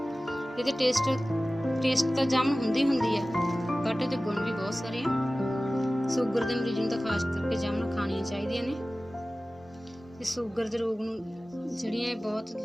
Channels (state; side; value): normal; both; correlation 0.97